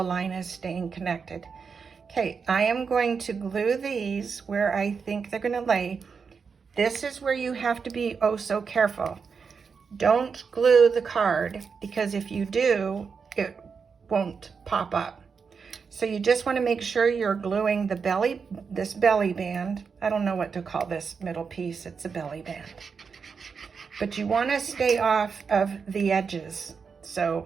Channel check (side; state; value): left; quieter; 5.7 dB